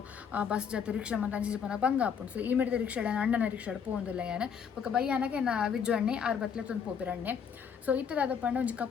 ಬಸ್ ಜೊತೆ ರಿಕ್ಷಾ ಮಂತ ಅಂಜಿ ಪನ ಬಂಗ ಆಪುಂಡು ಸೊ ಈ ಮಿಡಿದ ರಿಕ್ಷಾಡ ಅಣ್ಣನ ರಿಕ್ಷಾಡ್ ಪೋಂದಿಲ್ಲ ಯಾನು ಪಕ್ಕ ಬೈಯಾನಗೆ ನಾ ವಿಜ್ಜು ಅಣ್ಣೆ 6 ಬತ್ಲೆ ತಂದು ಪೋಪಿರಣ್ಣೆ ಸೊ ಇತ್ತದಾದ ಪಂಡ ಒಂಜಿ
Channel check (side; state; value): right; quieter; 7.1 dB